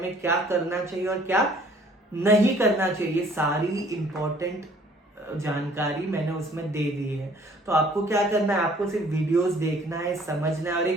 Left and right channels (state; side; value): normal; both; correlation 0.57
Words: क्या करना चाहिए और क्या नहीं करना चाहिए। सारी इंपॉर्टेंट जानकारी मैंने उसमें दे दी है। तो आपको क्या करना है? आपको सिर्फ वीडियोस देखना है, समझना है और